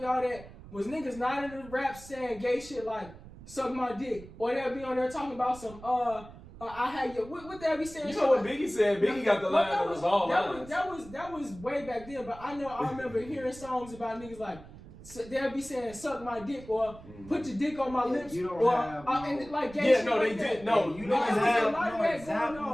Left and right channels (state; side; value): noise; right; rumble, 18 dB below the sound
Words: all that. Was niggas not in the rap saying gay shit like suck my dick, or they'll be on there talking about some I had your what they be saying? You know what Biggie said? Biggie got the line that was all lines. That was way back then, but I remember hearing songs about niggas like they'll be saying suck my dick or put your dick on my lips you don't or have and like gay shit. No, like they that. did. No, you No, niggas there's a have lot of no that